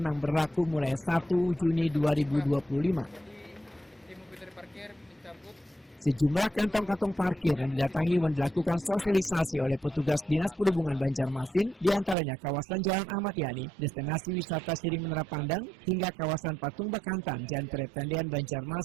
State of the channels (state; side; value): drops out; left; at 12.2 s